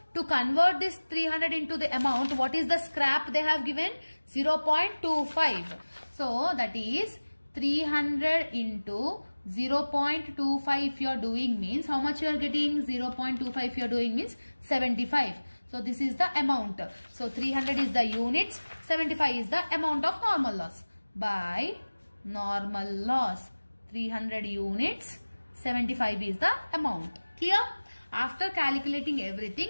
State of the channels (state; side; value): inverted; both; correlation -1.00